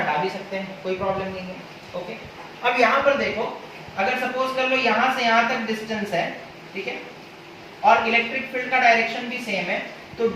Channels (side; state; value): both; identical; correlation 1.00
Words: भी सकते हैं, कोई प्रॉब्लम नहीं है, ओके। अब यहाँ पर देखो, अगर सपोज कर लो यहाँ से यहाँ तक डिस्टेंस है, ठीक है, और इलेक्ट्रिक फील्ड का डायरेक्शन भी सेम है, तो